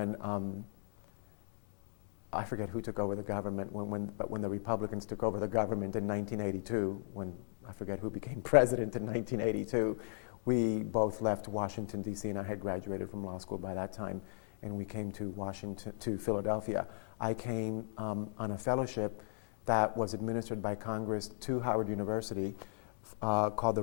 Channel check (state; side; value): silent; right; digital silence